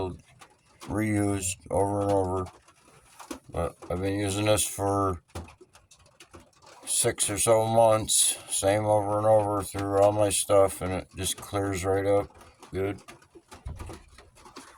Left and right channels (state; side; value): identical; both; correlation 1.00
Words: reused over and over. But I've been using this for 6 or so months. Same over and over through all my stuff, and it just clears right up. Good.